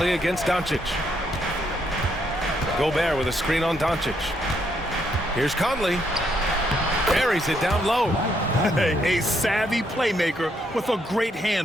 against Doncic. Gobert with a screen on Doncic. Here's Conley. Buries it down low. A savvy playmaker with a great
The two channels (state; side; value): normal; both; correlation 0.74